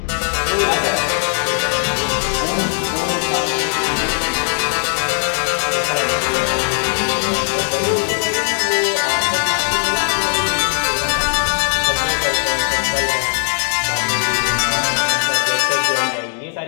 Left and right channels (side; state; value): right; silent; digital silence